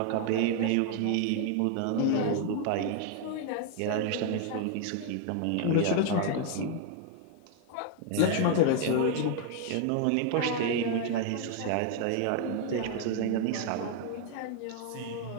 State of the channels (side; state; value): both; different; correlation 0.00